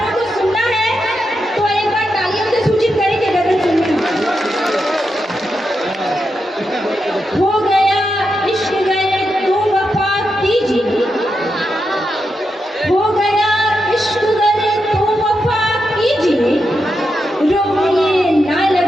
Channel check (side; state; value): both; normal; correlation 0.86